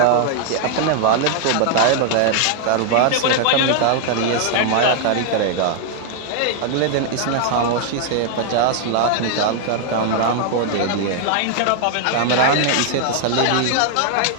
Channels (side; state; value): both; different; correlation 0.00